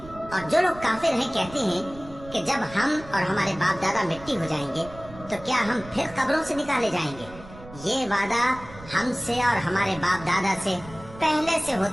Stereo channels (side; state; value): right; noise; rumble, 17 dB below the sound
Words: और जो लोग काफिर हैं कहते हैं कि जब हम और हमारे बाप दादा मिट्टी हो जाएंगे तो क्या हम फिर कब्रों से निकाले जाएंगे? ये वादा हमसे और हमारे बाप दादा से पहले से